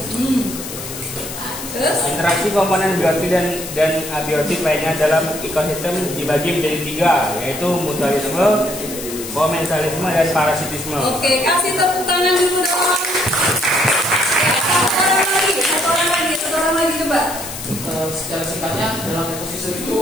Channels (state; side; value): noise; left; hiss, 10 dB below the sound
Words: Interaksi komponen biotik dan abiotik lainnya dalam ekosistem dibagi menjadi 3, yaitu mutualisme, komensalisme, dan parasitisme. Oke, kasih tepuk tangan dulu dong. Satu orang lagi coba. Secara singkatnya dalam ekosistem itu